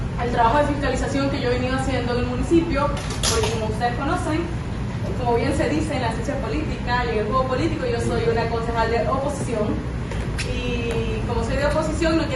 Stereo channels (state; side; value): identical; both; correlation 1.00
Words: el trabajo de fiscalización que yo he venido haciendo en el municipio, porque como ustedes conocen, como bien se dice en la ciencia política y en el juego político, yo soy una concejal de oposición, y como soy de oposición no